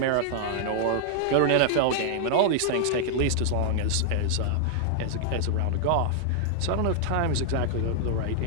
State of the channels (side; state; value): both; different; correlation 0.00